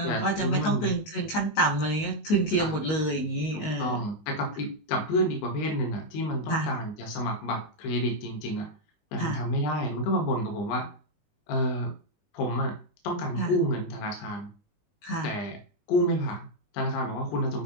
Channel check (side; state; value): right; late; 19 ms